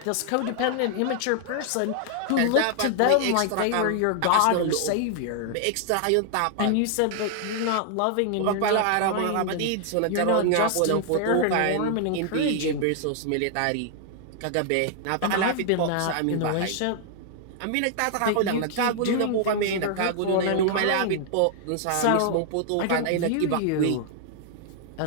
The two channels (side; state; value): both; different; correlation 0.00